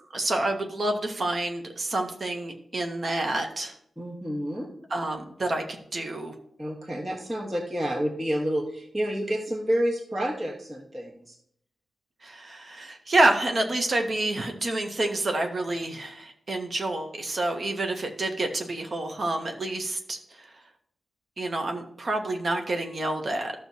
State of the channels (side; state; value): both; normal; correlation 0.92